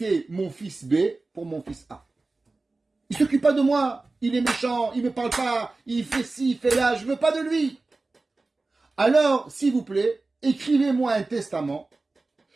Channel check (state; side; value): quieter; left; 3.4 dB